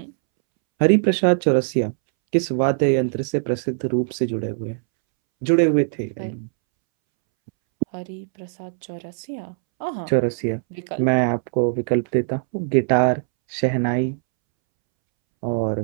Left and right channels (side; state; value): left; silent; 64 dB below the other